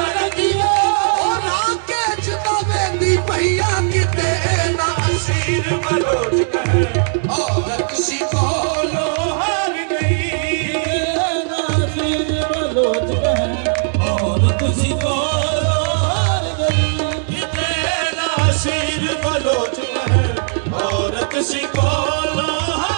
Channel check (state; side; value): silent; left; digital silence